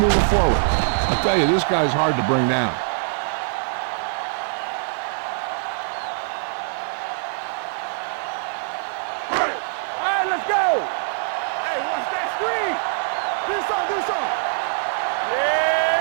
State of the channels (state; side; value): silent; left; digital silence